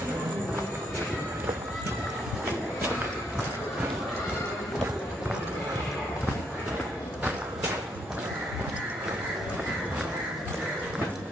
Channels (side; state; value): both; normal; correlation 0.73